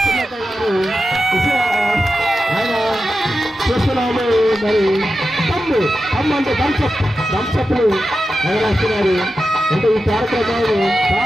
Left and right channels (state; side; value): normal; both; correlation 0.91